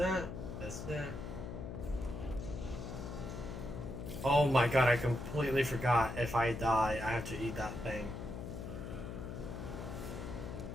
That's it. Oh my god, I completely forgot. If I die, I have to eat that thing.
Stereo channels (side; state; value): left; noise; hum, 7 dB below the sound